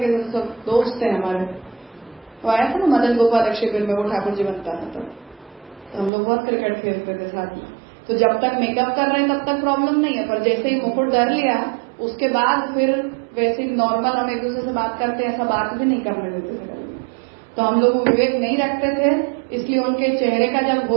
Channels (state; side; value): drops out; left; at 6.1 s